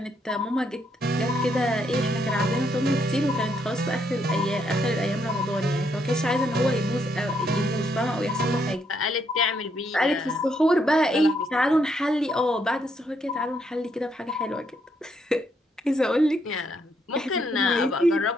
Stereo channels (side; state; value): both; normal; correlation 0.74